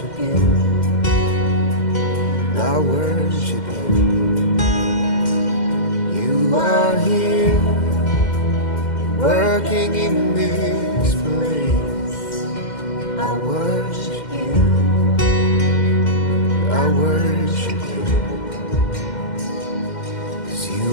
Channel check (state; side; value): late; right; 2.1 ms